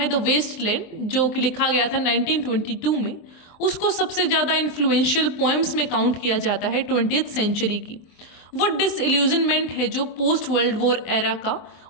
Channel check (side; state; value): right; late; 23 ms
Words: द वेस्ट लैंड, जो कि लिखा गया था 1922 में। उसको सबसे ज़्यादा इन्फ्लुएंशियल पोएम्स में काउंट किया जाता है 20th सेंचुरी की। वो डिसइल्यूजनमेंट है जो पोस्ट वर्ल्ड वॉर एरा का,